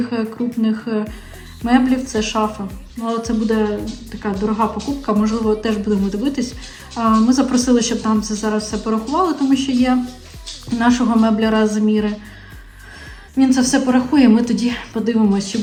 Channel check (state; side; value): identical; both; correlation 1.00